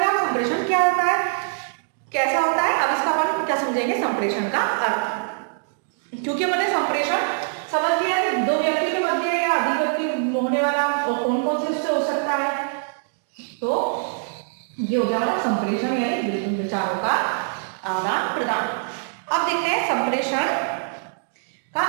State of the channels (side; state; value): left; silent; digital silence